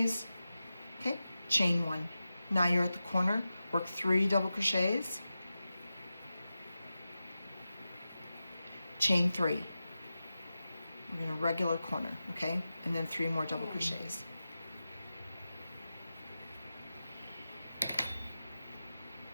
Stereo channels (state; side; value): inverted; both; correlation -0.93